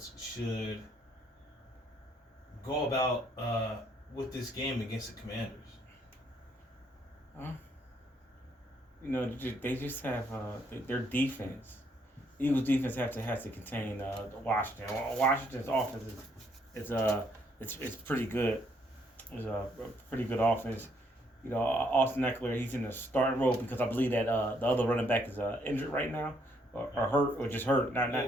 should go about with this game against the Commanders? They just have their defense. Eagles defense has to contain Washington. Washington's offense is pretty good. It's a pretty good offense. Austin Eckler, he's in the starting role because I believe that the other running back is injured right now or hurt or just hurt.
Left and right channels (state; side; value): normal; both; correlation 0.70